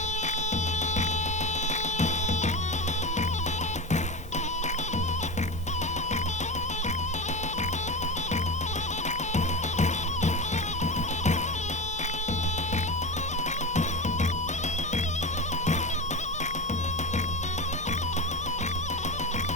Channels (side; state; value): left; noise; hum, 18 dB below the sound